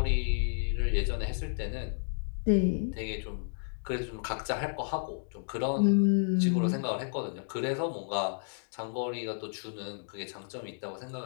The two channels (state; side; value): silent; right; digital silence